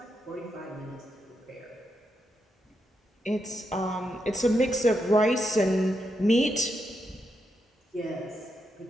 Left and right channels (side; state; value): both; normal; correlation 0.83